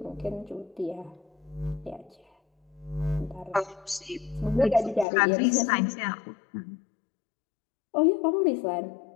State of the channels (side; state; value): right; drops out; at 5.1 s